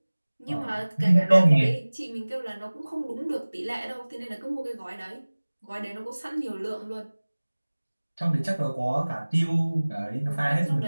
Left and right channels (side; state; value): both; inverted; correlation -1.00